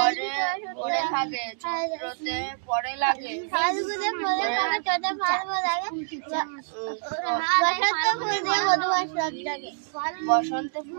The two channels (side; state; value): left; silent; digital silence